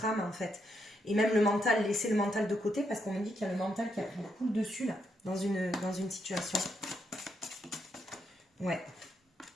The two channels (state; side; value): normal; both; correlation 0.79